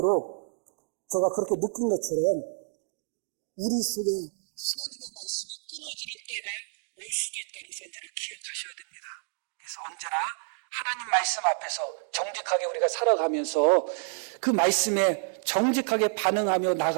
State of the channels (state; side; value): silent; left; digital silence